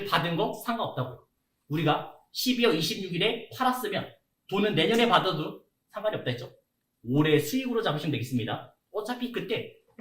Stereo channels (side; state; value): both; identical; correlation 1.00